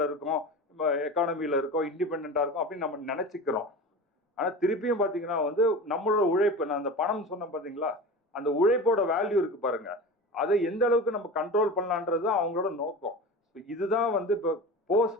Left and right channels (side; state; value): both; normal; correlation 0.31